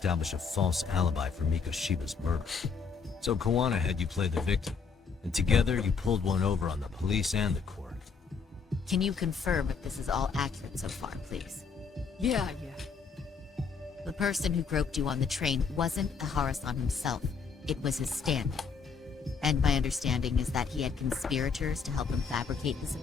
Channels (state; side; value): quieter; right; 5.5 dB